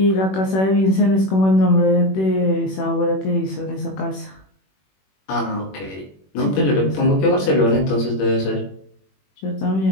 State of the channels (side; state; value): right; late; 21 ms